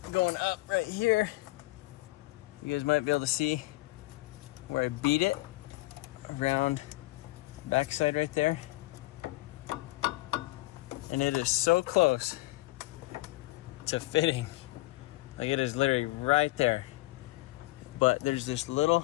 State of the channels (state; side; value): quieter; right; 20.5 dB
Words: going up right here, you guys might be able to see where I beat it around the backside right there. And it is so close to fitting. Like it is literally right there. But there's this little